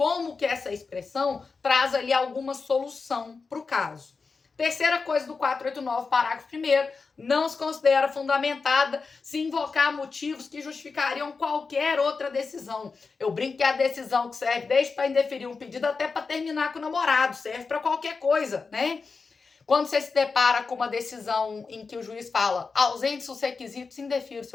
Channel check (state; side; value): quieter; right; 4.7 dB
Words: que essa expressão traz ali alguma solução para o caso. Terceira coisa do 489, parágrafo 1º, não se considera fundamentada se invocar motivos que justificariam qualquer outra decisão. Eu brinco que é a decisão que serve desde para indeferir um pedido até para terminar com o namorado, serve para qualquer coisa, né? Quando você se depara com uma decisão em que o juiz fala ausentes os requisitos, indefira o